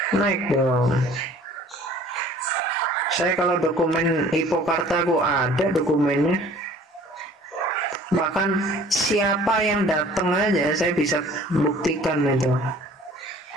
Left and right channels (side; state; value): both; normal; correlation 0.51